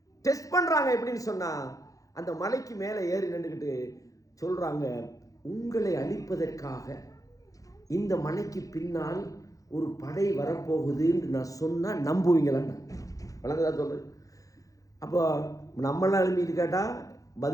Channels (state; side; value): late; right; 0.17 ms